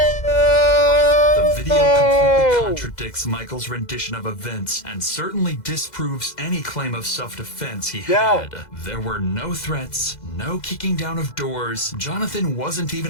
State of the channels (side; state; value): right; late; 2.0 ms